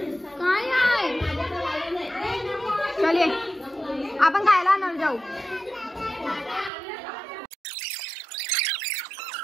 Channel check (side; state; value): left; drops out; at 6.7 s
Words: काय आहे? चलिए आपण खायला आणणार जाऊ.